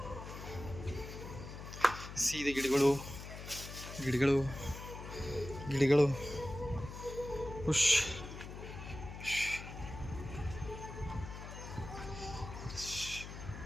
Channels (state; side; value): noise; left; hum, 10 dB below the sound